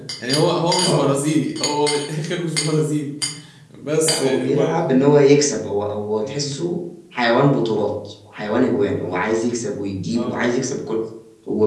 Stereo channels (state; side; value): identical; both; correlation 1.00